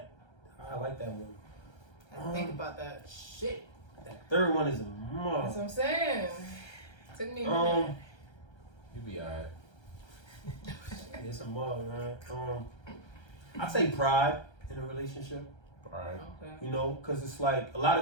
I like that one. I have to think about that. Shit. That third one is a That's must. what I'm saying. Took me a minute. You be alright. It's a must, man. I'd say pride in a relationship. Alright. Okay. You know, because it's like a lot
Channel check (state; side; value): late; right; 1.3 ms